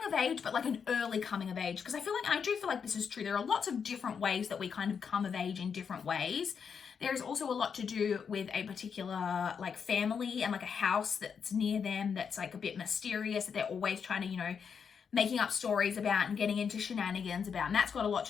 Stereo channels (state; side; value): quieter; right; 6.6 dB